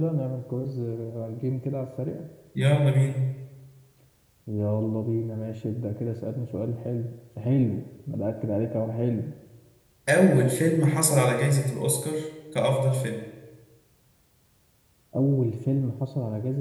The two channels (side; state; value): both; identical; correlation 1.00